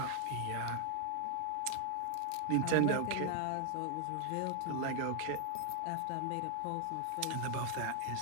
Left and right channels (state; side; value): different; both; correlation 0.00